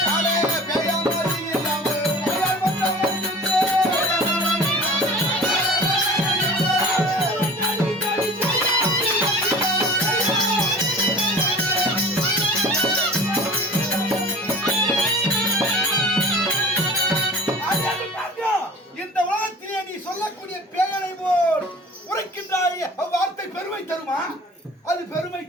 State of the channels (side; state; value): both; normal; correlation 0.40